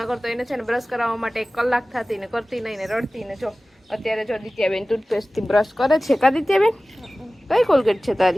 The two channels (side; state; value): both; normal; correlation 0.97